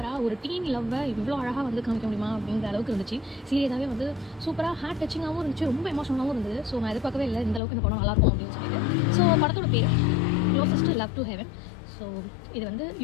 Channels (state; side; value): drops out; right; at 7.6 s